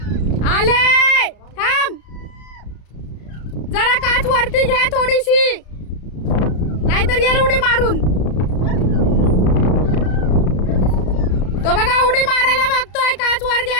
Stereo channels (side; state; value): right; late; 33 ms